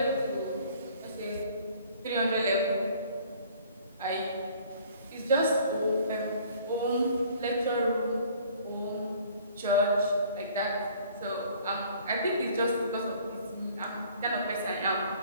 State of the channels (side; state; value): both; inverted; correlation -0.54